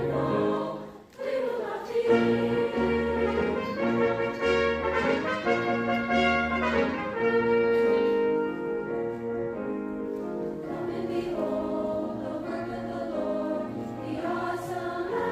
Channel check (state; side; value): identical; both; correlation 1.00